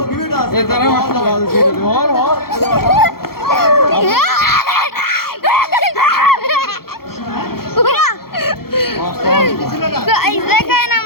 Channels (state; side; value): late; right; 0.94 ms